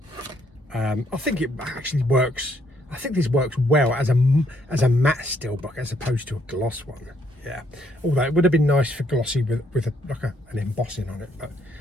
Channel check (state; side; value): normal; both; correlation 0.70